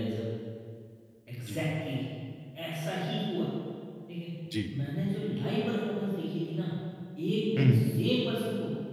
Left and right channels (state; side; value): identical; both; correlation 1.00